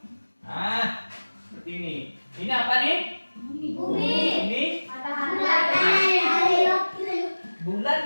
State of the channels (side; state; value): both; inverted; correlation -1.00